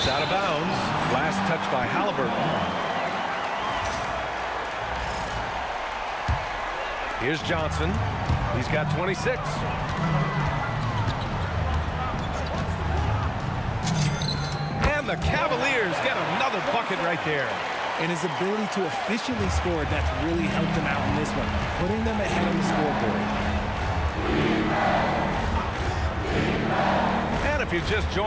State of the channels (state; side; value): identical; both; correlation 1.00